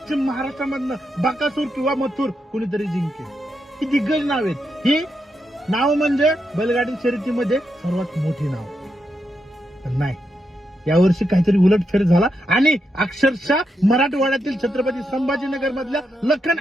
महाराष्ट्रामधनं बकासूर किंवा मथुर कुणीतरी जिंकेल. ही दिग्गज नाव आहेत. ही नाव म्हणजे बैलगाडी शर्यतीमध्ये सर्वात मोठी नाव. पण नाही, यावर्षी काहीतरी उलटफेर झाला आणि अक्षरशः मराठवाड्यातील छत्रपती संभाजीनगर मधल्या लखन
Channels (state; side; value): normal; both; correlation 0.84